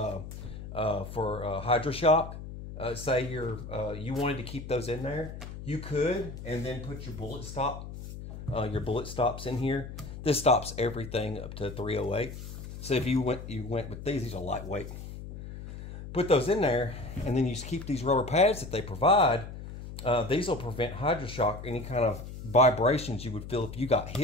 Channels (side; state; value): left; noise; hum, 11 dB below the sound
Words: hydroshock. Say you wanted to keep those in there, you could, and then put your bullet stops in here. This stops everything up to 308. So if you went with these are lightweight. Put those in there, and then you just keep these rubber pads that they provide. These will prevent hydroshock, any kind of vibrations you would feel if you got